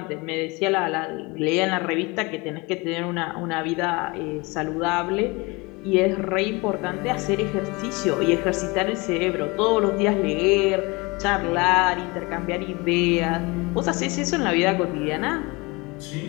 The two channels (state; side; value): quieter; right; 25.5 dB